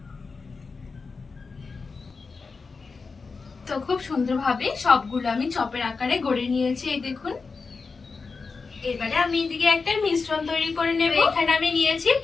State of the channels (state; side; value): quieter; right; 4.6 dB